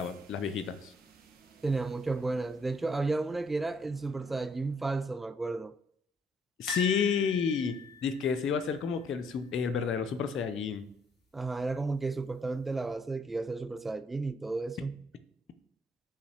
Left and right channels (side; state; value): both; normal; correlation 0.67